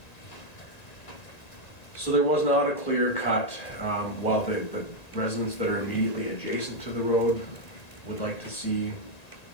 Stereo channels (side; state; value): right; late; 1.9 ms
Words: So there was not a clear cut. While the residents that are immediately adjacent to the road would like to see